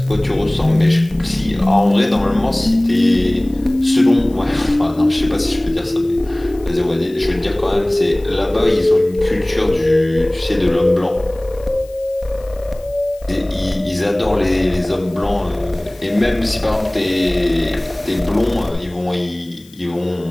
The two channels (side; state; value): left; noise; hiss, 27 dB below the sound